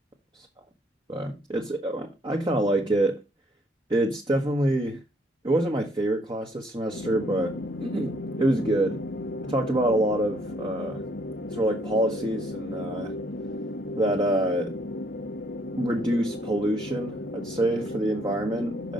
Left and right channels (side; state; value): both; normal; correlation 0.66